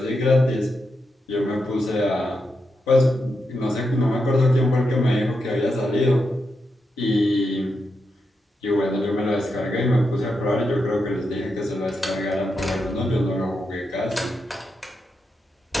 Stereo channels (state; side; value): normal; both; correlation 0.85